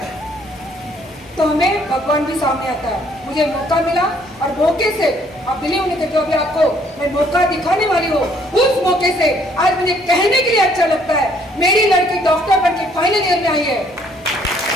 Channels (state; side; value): normal; both; correlation 0.64